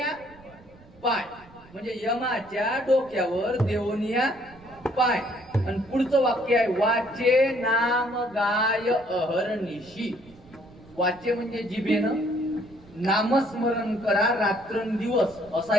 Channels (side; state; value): right; noise; rumble, 24 dB below the sound